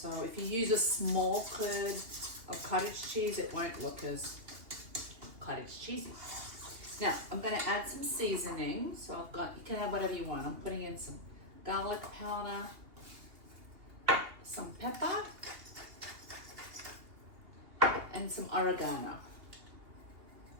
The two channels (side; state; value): left; late; 2.8 ms